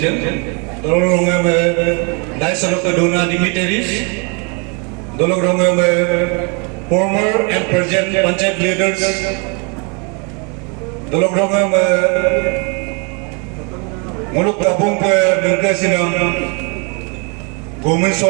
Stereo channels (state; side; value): quieter; left; 34.0 dB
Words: Dalorongam Dyson of the Dona dignitaries, Dalorongam former and present Panchayat leaders, Dalorongam Muluk Tabung Bengkasinam, Gomin